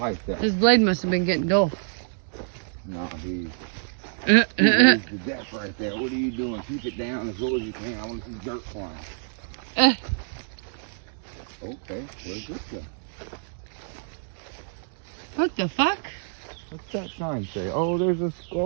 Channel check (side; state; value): left; silent; digital silence